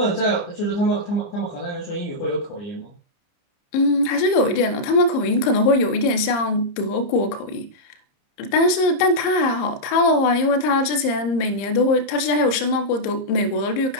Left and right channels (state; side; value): late; right; 30 ms